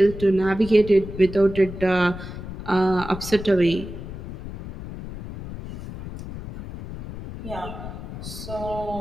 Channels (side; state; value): left; noise; rumble, 11 dB below the sound